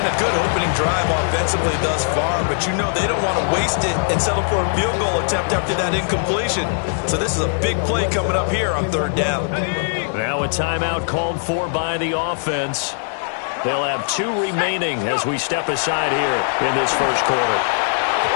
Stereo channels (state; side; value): silent; right; 65 dB below the other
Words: a good opening drive offensively thus far, but you know they don't want to waste it and settle for a field goal attempt after that incompletion. So this is a big play coming up here on 3rd down. Now a timeout called for by the offense. They'll have 2 remaining as we step aside here in this first quarter.